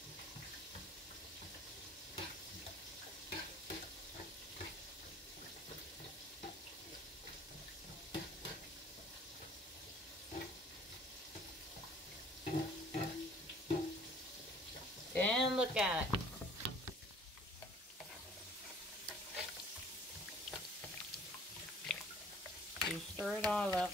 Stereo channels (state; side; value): normal; both; correlation 0.53